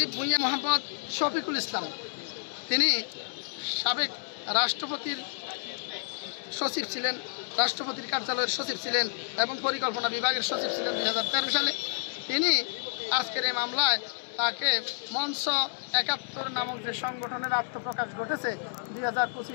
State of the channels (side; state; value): right; silent; 58 dB below the other